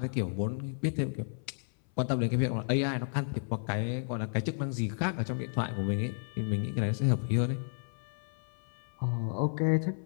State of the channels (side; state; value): right; silent; 56 dB below the other